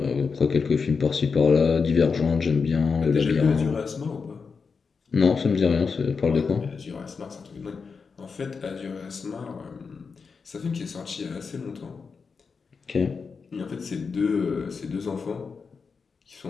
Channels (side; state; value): right; quieter; 5.2 dB